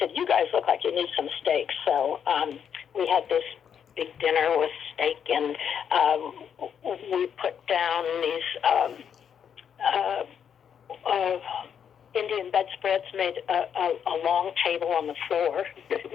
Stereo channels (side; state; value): right; quieter; 8.0 dB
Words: you guys look like you need some steaks. So we had this big dinner with steak, and we put down these Indian bedspreads, made a long table on the floor,